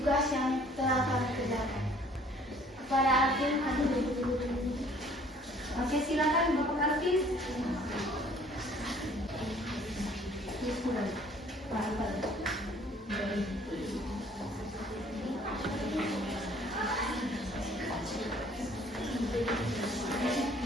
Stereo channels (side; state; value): both; normal; correlation 0.56